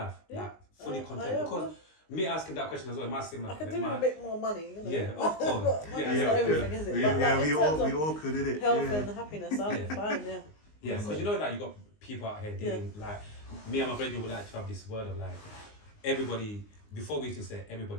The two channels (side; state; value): right; late; 19 ms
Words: Like, fully content? Because me asking that question as well, it might seem like, I could do a bit more money, of course. Money's not everything, is it? We all could, did it? Health and happiness, I'm fine, because you know that you got people out here dealing, like, me and my friend would like to have this word of like, everybody, before we used to say